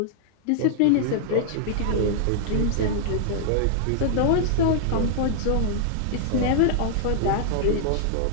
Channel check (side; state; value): both; different; correlation -0.01